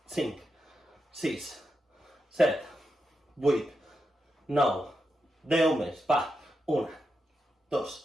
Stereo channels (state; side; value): normal; both; correlation 0.86